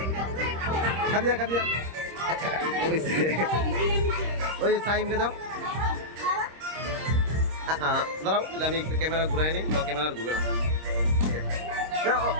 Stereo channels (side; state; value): left; late; 26 ms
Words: খাদিয়া খাদিয়া ওই যে সাইমকে দাও। দাঁড়াও আমি একটু ক্যামেরা ঘুরাই নি, ক্যামেরা ঘুরে না